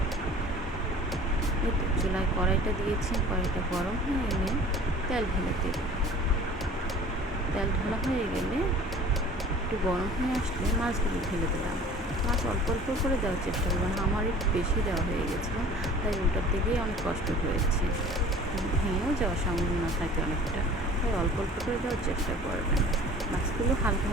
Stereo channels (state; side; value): normal; both; correlation 0.45